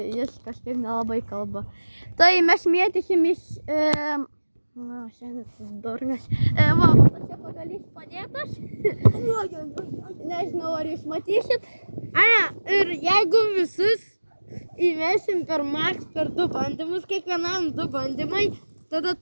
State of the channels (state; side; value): inverted; both; correlation -1.00